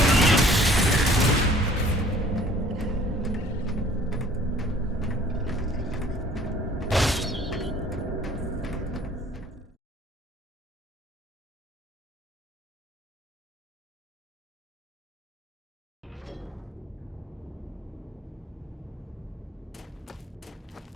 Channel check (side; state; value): both; normal; correlation 0.53